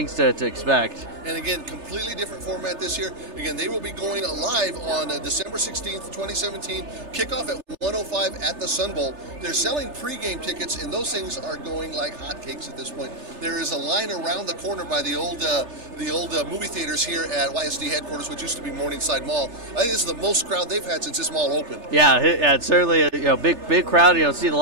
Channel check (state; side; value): late; left; 3.3 ms